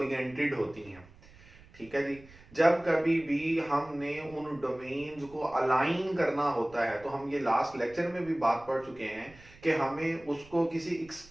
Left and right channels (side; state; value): right; noise; rumble, 23 dB below the sound